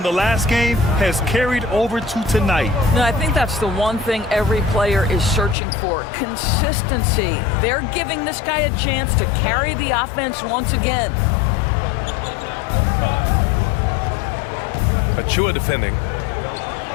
the last game has carried over to tonight. No, I think that's the one thing every player is searching for. Consistency. They're giving this guy a chance to carry the offense once again. Achua defending.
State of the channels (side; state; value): right; drops out; at 5.6 s